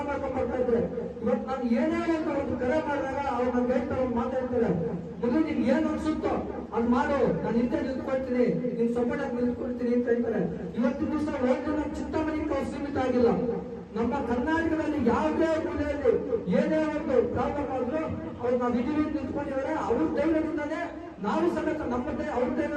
ಮಾಡ್ಕೊಂಡು ಬರ್ತಾ ಇದ್ದೆ. ಇವತ್ತು ನಾನು ಏನೇ ಒಂದು ಕರೆ ಮಾಡಿದಾಗ ಅವ್ರು ನನ್ಗೆ ಹೇಳ್ತಾರೆ, ಮಾತಾಡ್ತಾರೆ, ಮೊದಲು ನಿನ್ ಏನ್ ಅನ್ಸುತ್ತೋ ಅದ್ ಮಾಡು, ನಾನು ಹಿಂದೆ ನಿಂತ್ಕೊಳ್ತೀನಿ, ನಿನ್ ಸಪೋರ್ಟ್ ಆಗಿ ನಿಂತ್ಕೊಳ್ತೀನಿ ಅಂತ ಹೇಳ್ತಾರೆ. ಇವತ್ತಿನ ದಿವಸ ಒಂದು ನಮ್ಮ ಚಿಂತಾಮಣಿಗೆ ಅವ್ರು ಸೀಮಿತ ಆಗಿಲ್ಲ. ನಮ್ಮ ಕರ್ನಾಟಕದಲ್ಲಿ ಯಾವುದೇ ಮೂಲೆಯಲ್ಲಿ ಏನೇ ಒಂದು ಪ್ರಾಬ್ಲಮ್ ಆದ್ರೂ ಅವ್ರು ನಾವು ಇದೀವಿ ನಿಂತ್ಕೊಂಡಿದ್ದಾರೆ. ಅವ್ರ ಧೈರ್ಯದಿಂದಾನೇ ನಾವು ಸಮೇತ ನಮ್ಮದೇ ಅವ್ರ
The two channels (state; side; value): identical; both; correlation 1.00